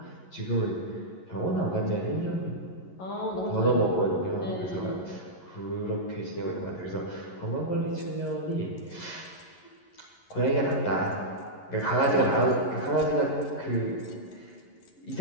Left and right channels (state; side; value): late; right; 11 ms